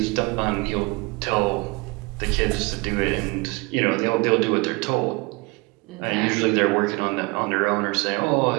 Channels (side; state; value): left; quieter; 27.1 dB